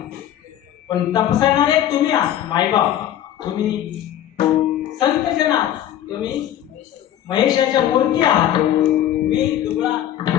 पण तपसायणारे तुम्ही आहात मायबाप, तुम्ही संतजन आहात, तुम्ही महेशाच्या मूर्ती आहात. मी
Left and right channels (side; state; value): right; quieter; 11.5 dB